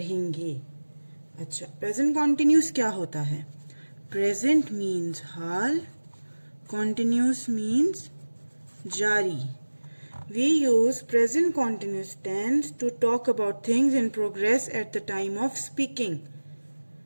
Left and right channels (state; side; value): inverted; both; correlation -1.00